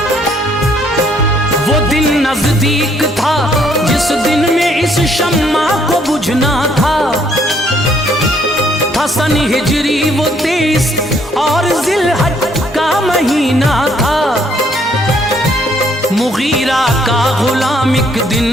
वो दिन नजदीक था जिस दिन में इस शम्मा को बुझना था। सन हिजरी वो 23 और जिलहज का महीना था। मुगीरा का गुलाम एक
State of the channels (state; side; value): normal; both; correlation 0.66